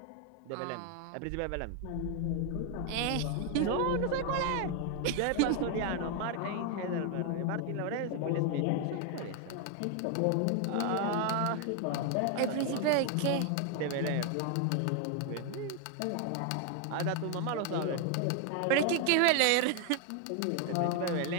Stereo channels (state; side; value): different; both; correlation 0.01